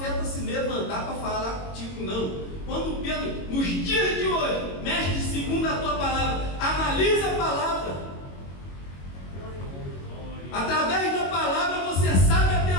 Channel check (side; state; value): right; late; 22 ms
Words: se levantar para falar contigo, não. Quando Pedro, nos dias de hoje, mestre, segundo a tua palavra, analisa a palavra. Através da palavra você sabe até